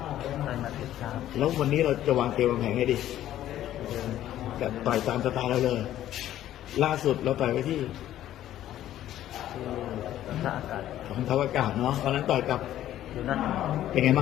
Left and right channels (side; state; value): right; quieter; 12.5 dB